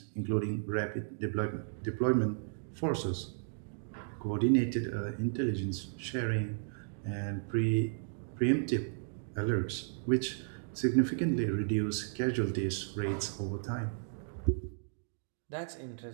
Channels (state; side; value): silent; left; digital silence